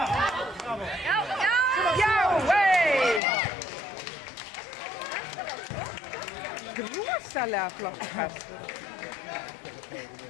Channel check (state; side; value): drops out; right; at 3.2 s